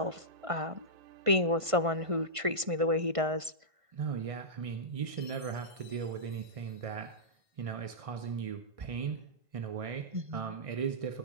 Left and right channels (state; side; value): late; left; 1.5 ms